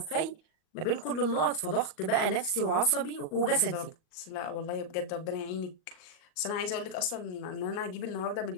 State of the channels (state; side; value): late; right; 38 ms